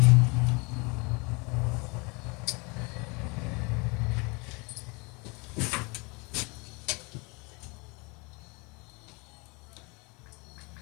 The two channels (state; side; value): quieter; right; 29.1 dB